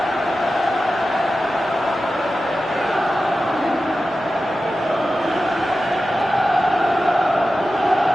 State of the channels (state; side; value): normal; both; correlation 0.93